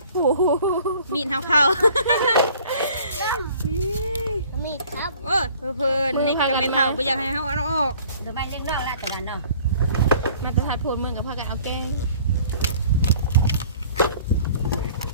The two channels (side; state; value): both; inverted; correlation -0.53